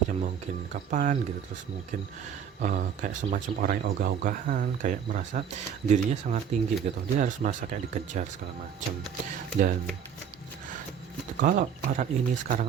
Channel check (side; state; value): left; quieter; 8.2 dB